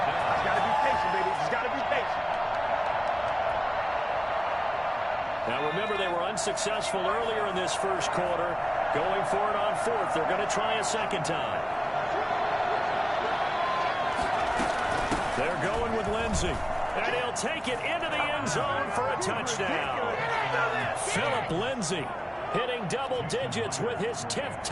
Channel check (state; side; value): identical; both; correlation 1.00